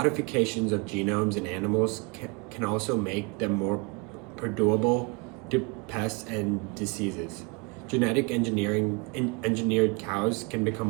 of genomes in animals can also make them more perdurable to pests and diseases. Genetic engineered cows can become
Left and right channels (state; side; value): quieter; left; 29.9 dB